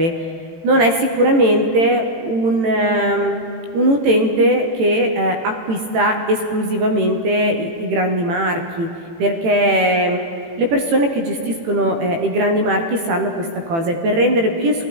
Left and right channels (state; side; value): late; left; 18 ms